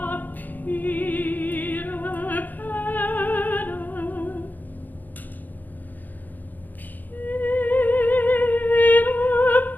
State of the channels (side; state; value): right; late; 0.084 ms